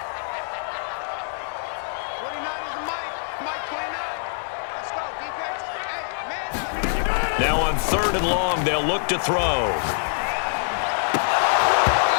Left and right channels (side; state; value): right; silent; 62 dB below the other